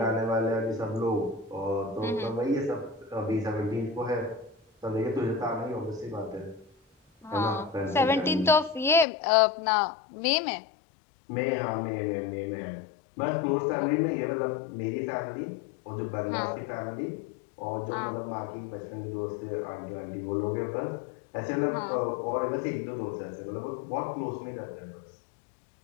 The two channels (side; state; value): right; drops out; at 9.1 s